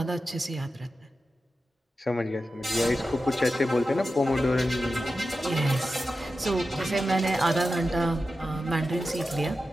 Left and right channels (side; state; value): both; normal; correlation 0.92